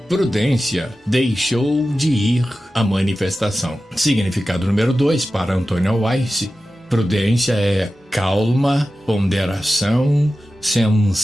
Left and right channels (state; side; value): normal; both; correlation 0.94